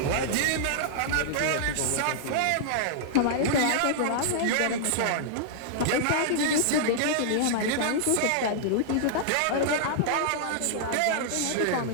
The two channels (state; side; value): different; both; correlation -0.01